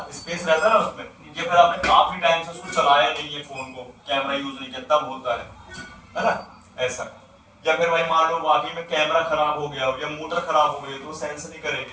स्पेस रहता है ना उसमें, या फिर आपने काफी टाइम से उसको चलाया नहीं है फोन को, कैमरा यूज नहीं किया तब होता है ना, ऐसा। या फिर भाई मान लो वाकई में कैमरा खराब हो गया हो या मोटर खराब हो गई तो वो सेंस नहीं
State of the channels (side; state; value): both; identical; correlation 1.00